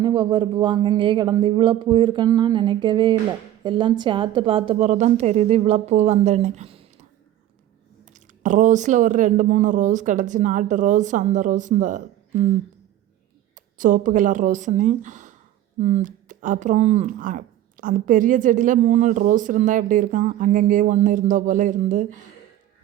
ஒவ்வொரு பூவாக அங்கங்கேயே கிடந்து இவ்வளோ பூ இருக்குன்னு நான் நினைக்கவே இல்லை. எல்லாம் சேர்த்து பார்த்த பிறகு தான் தெரியுது இவ்வளோ பூ வந்தேன்னு. ரோஸில் ஒரு 2-3 ரோஸ் கிடச்சி, நாட்டு ரோஸ். அந்த ரோஸ் இந்த சோப்பு கலர் ரோஸுன்னு. அப்புறம் அந்த பெரிய செடியில் 3 ரோஸ் இருந்தால் எப்படி இருக்கும், அங்கங்கேயே ஒன்று இருந்தோ போல் இருந்து.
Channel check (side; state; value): left; quieter; 12.7 dB